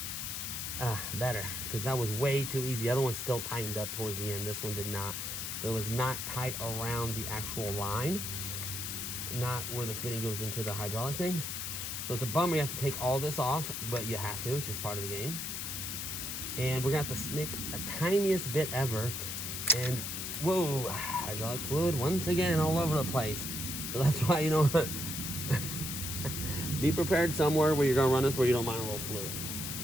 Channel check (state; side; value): noise; left; hiss, 4 dB below the sound